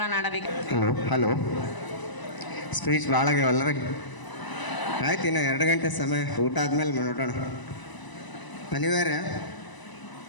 ಆಡಬೇಕು. ಹಲೋ ಸ್ಪೀಚ್ ಭಾಳ ಆಗ್ಯಾವಲ್ಲ, ಆಯ್ತು, ಇನ್ನು 2 ಗಂಟೆ ಸಮಯ, ಊಟ ಆದ್ಮೇಲೆ ನೋಡೋಣ. ಅನಿವಾರ್ಯ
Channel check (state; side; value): late; right; 1.0 ms